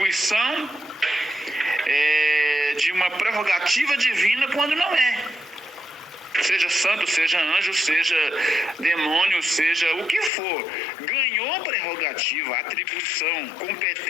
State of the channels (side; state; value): right; drops out; at 10.3 s